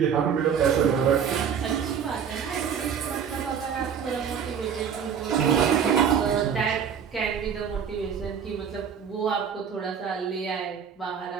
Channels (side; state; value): left; quieter; 7.5 dB